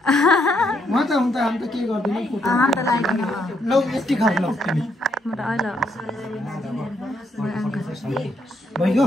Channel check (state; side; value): normal; both; correlation 0.75